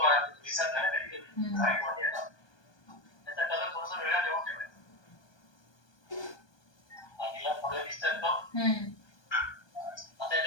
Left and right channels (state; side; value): late; right; 1.2 ms